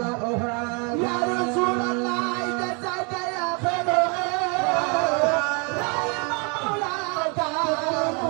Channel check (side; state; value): left; quieter; 34.0 dB